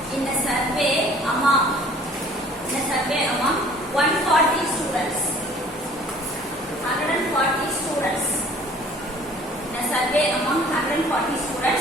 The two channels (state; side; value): normal; both; correlation 0.52